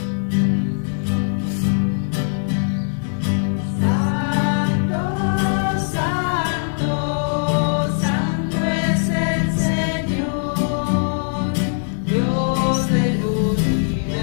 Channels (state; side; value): silent; right; digital silence